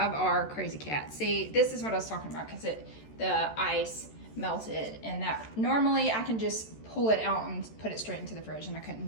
our crazy cat. See, this is what I was talking about, because the ice melted, and that normally I can just pull it out and put it straight into the fridge, and I couldn't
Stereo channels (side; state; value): right; late; 14 ms